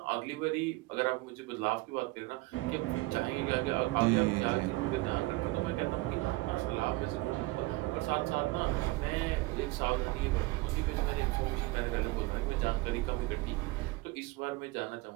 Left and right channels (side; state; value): left; quieter; 21.5 dB